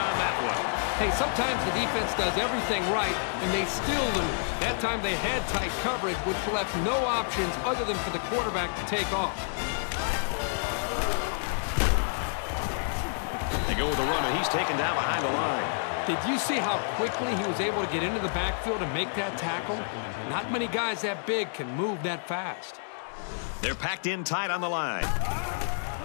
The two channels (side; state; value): right; silent; digital silence